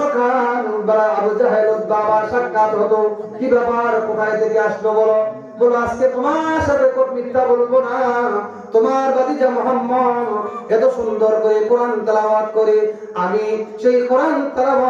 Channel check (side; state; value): both; identical; correlation 1.00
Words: আবু জাহেল বাবা সাক্ষাৎ হতো। কি ব্যাপার, কোথায় থেকে আসলো বলো? বলো আজকে তোমার সাথে মিথ্যা বলবো না, তোমার ভাতিজা মুহাম্মদ এত সুন্দর করে কোরআন তেলাওয়াত করে, আমি সেই কোরআন